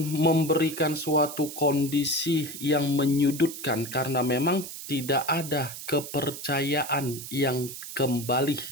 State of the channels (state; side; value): noise; right; hiss, 10 dB below the sound